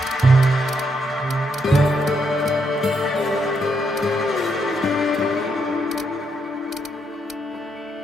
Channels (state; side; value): normal; both; correlation 0.77